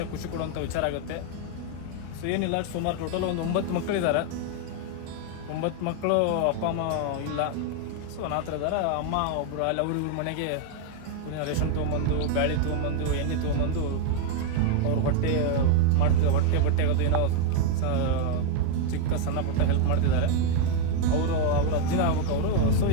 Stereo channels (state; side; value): different; both; correlation 0.01